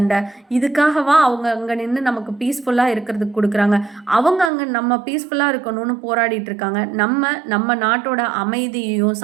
இதுக்காகவா அவங்க அங்க நின்னு நமக்கு பீஸ்ஃபுல்லா இருக்கிறதுக்கு குடுக்குறாங்க? அவங்க அங்க நம்ம பீஸ்ஃபுல்லா இருக்கணும்னு போராடிட்டு இருக்காங்க. நம்ம நாட்டோட அமைதியையும்,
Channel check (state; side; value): drops out; left; at 4.5 s